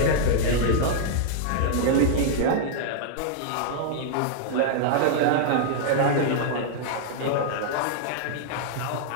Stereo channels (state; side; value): different; both; correlation -0.01